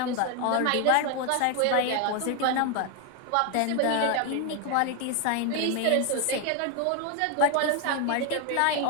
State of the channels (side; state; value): both; different; correlation 0.01